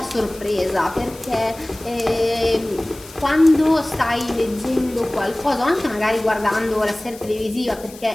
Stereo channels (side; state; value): left; noise; hiss, 19 dB below the sound